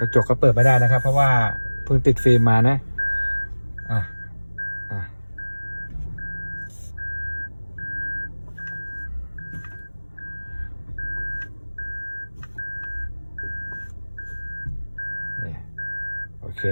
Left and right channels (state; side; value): inverted; both; correlation -1.00